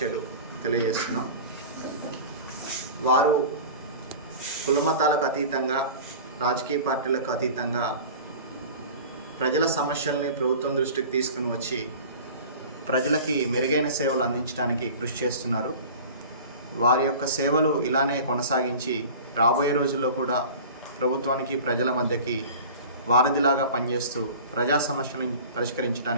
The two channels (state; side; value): inverted; both; correlation -0.39